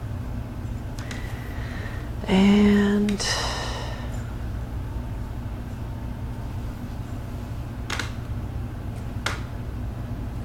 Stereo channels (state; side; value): identical; both; correlation 1.00